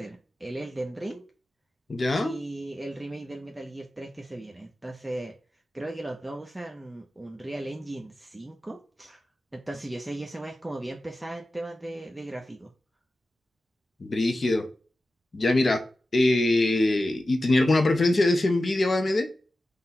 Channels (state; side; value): normal; both; correlation 0.94